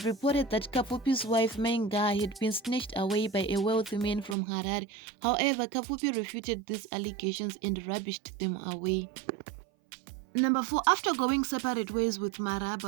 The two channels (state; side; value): drops out; left; at 4.4 s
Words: reported that Kapfupi's wife Mainga had been snatched away by a wealthy man from Harare. However, Kapfupi refuted these allegations and rubbished them away. Number 4. After going separate ways with